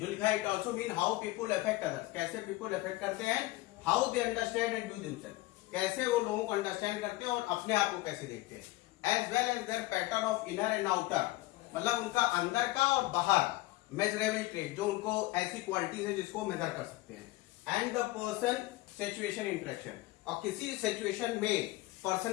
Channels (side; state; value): right; quieter; 19.4 dB